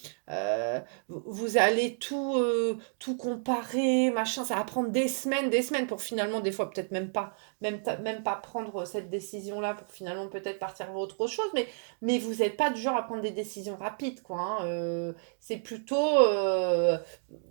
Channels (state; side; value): silent; left; digital silence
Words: vous allez tout comparer, machin, ça va prendre des semaines pour finalement, des fois, peut-être même pas prendre cette décision-là pour finalement peut-être partir vers autre chose, mais vous n'êtes pas du genre à prendre des décisions rapides, quoi, hein. C'est plutôt,